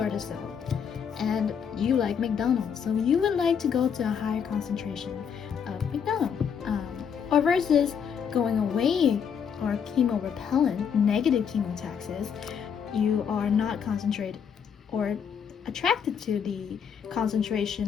the cell and you like McDonald's, so you would like to go to a higher concentration of McDonald's, or versus going away or chemorepellent, negative chemotaxis, you are not concentrated or attracted to the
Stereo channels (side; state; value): right; quieter; 7.3 dB